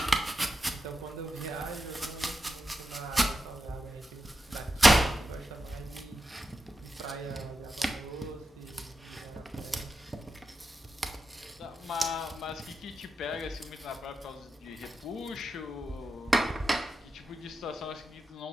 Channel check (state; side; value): normal; both; correlation 0.89